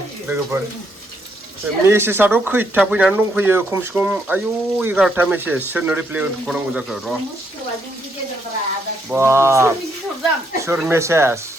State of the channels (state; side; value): normal; both; correlation 0.75